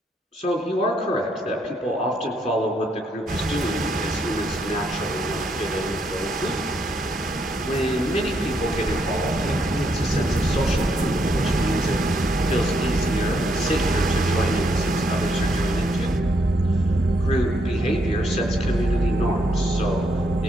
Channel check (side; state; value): both; normal; correlation 0.75